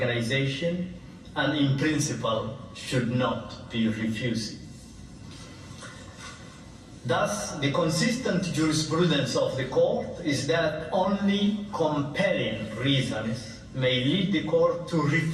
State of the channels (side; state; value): both; identical; correlation 1.00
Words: and in principle should not be refused. Thus, the consistent jurisprudence of the court is that only compelling reasons may lead the court to